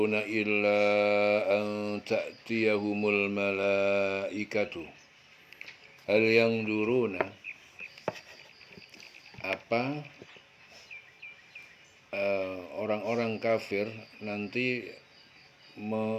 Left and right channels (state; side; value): identical; both; correlation 1.00